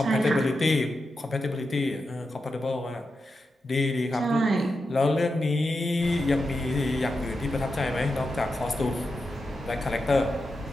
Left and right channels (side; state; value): both; normal; correlation 0.89